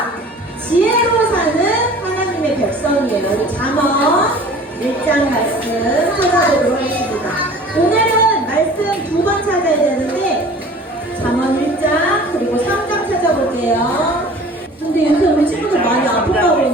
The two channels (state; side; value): normal; both; correlation 0.45